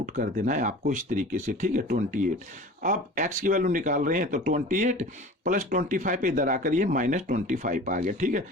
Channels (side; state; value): both; normal; correlation 0.39